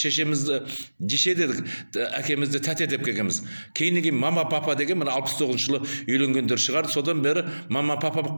жеше дедік, әкемізді тәте деп келгенбіз. Кейіннен мама папа деген мына 69 жылы үйленгендер шығар. Содан бері мама папа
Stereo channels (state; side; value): inverted; both; correlation -1.00